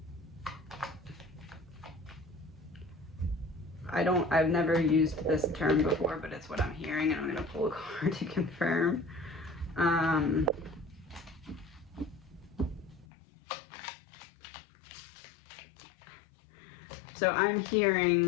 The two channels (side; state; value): right; drops out; at 13.1 s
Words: I've never used this term before, but it's what I'm hearing, and I'm gonna pull a card to confirm. So I'm